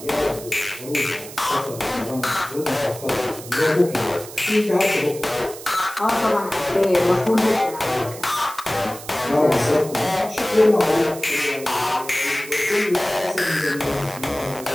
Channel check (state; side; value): noise; right; hiss, 14 dB below the sound